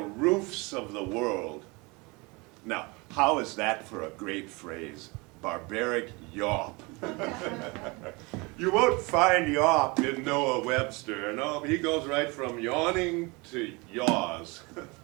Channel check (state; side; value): quieter; left; 26.7 dB